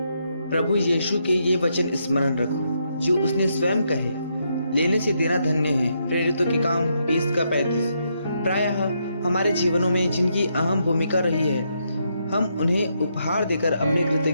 प्रभु यीशु के ये वचन स्मरण रखो जो उसने स्वयं कहे, लेने से देना धन्य है। प्रेरितों के काम 20 का 35। प्रायः हमारे जीवनों में जिनकी अहम भूमिका रही है, हम उन्हें उपहार देकर अपनी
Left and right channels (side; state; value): both; inverted; correlation -0.78